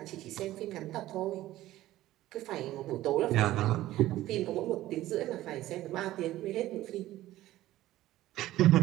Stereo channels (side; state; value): left; quieter; 15.3 dB